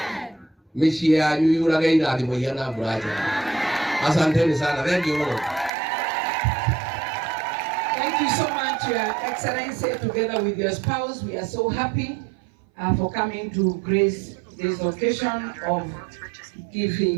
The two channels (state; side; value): drops out; left; at 5.7 s